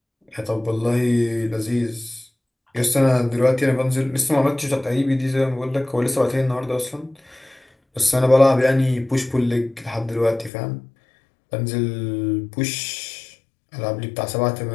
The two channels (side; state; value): right; drops out; at 10.5 s